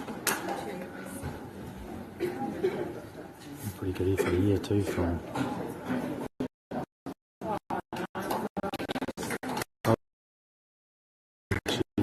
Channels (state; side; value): identical; both; correlation 1.00